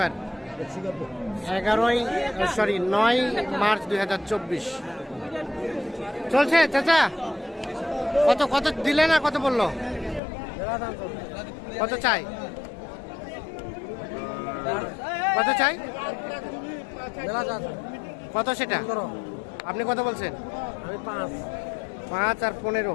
9 মার্চ 2024। চলছে চাচা, কত দিলে না, কত বললো, কত চাই কত সেটা আপনি কত বলছেন? আমি 5 আর 15।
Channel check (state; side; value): drops out; right; at 10.2 s